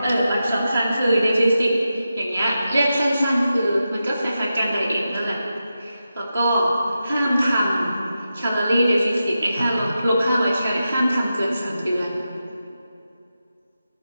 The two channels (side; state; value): both; inverted; correlation -0.90